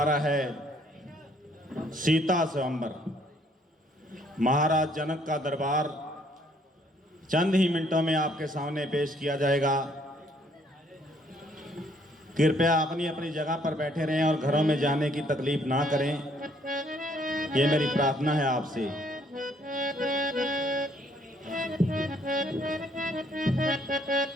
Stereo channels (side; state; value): both; normal; correlation 0.65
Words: रहा है, सीता स्वयंवर, महाराज जनक का दरबार चंद ही मिनटों में आपके सामने पेश किया जाएगा। कृपया अपनी अपनी जगह पर बैठे रहें और घरों में जाने की तकलीफ ना करें, ये मेरी प्रार्थना है आपसे।